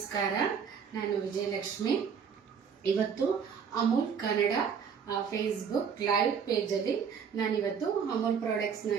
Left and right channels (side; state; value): left; quieter; 6.8 dB